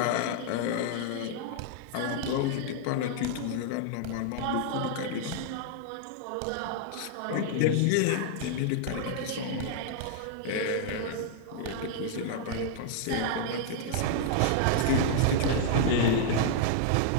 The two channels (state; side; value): different; both; correlation -0.01